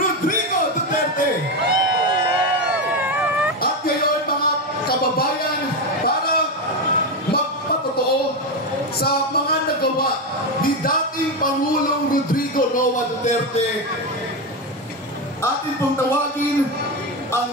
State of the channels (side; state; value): both; normal; correlation 0.12